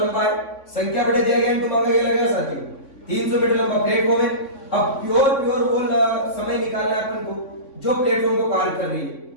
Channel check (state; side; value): late; right; 3.6 ms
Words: है, संख्या बढ़े दिया गया इनटू मांगा गया लगेगा साथियों, 300 मीटर लंबा प्लेटफॉर्म है। अब प्योर वो समय निकालना है अपन को जो प्लेटफॉर्म को पार कर रही है।